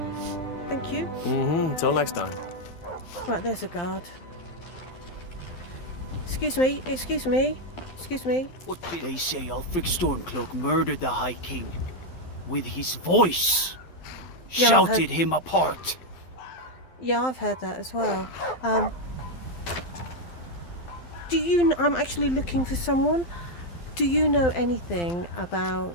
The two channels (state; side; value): late; right; 12 ms